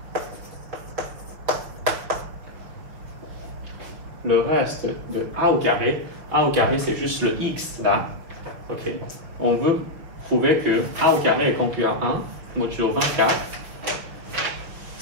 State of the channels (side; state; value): left; late; 6.2 ms